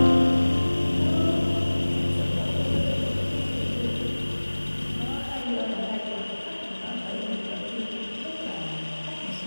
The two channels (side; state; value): both; inverted; correlation -1.00